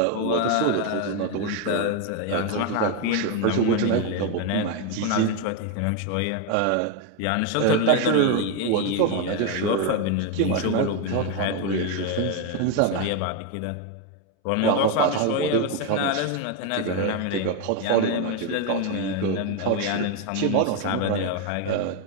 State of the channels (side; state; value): both; different; correlation 0.02